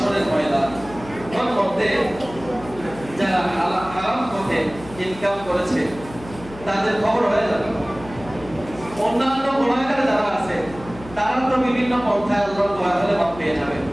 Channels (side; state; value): left; noise; hum, 16 dB below the sound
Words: ময়দান, তার মধ্যে যারা হারাম পথে ইনকাম করেছে তাদের খবর হয়ে যাবে। অন্যান্য গুনাহগার যারা আছে তারা তো বিভিন্ন পন্থায় আল্লাহর দয়া হলে মাপ পেয়ে যাবে,